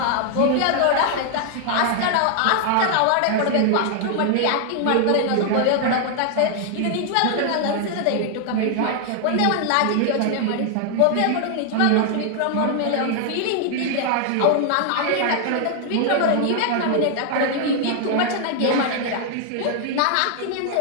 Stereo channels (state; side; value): different; both; correlation 0.00